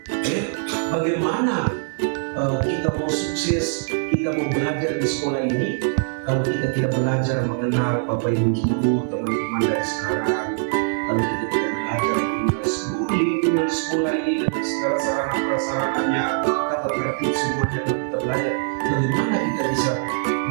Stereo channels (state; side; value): silent; left; 64 dB below the other